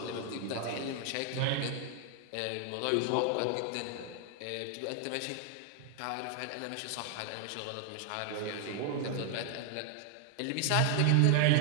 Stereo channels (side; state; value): both; different; correlation 0.00